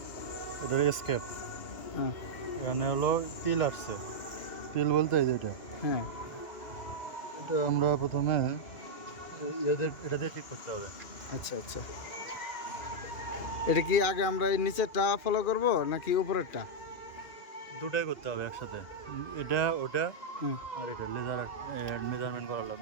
এটা এসকেপ, হ্যাঁ এখানে হলো তিল আসছে। তিল বলতে এই যে এটা হ্যাঁ। এটা আমরা প্রথমে এটা দিয়ে ঠিক করতে হবে। আচ্ছা আচ্ছা, এটা কি আগে আমরা এই নিচেরটা ফলো করব নাকি উপরেরটা? দুটাই করতে হবে একসাথে, এটা ওটা হ্যাঁ। আর এটা লেজার মেজারমেন্ট করা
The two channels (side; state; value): right; late; 2.4 ms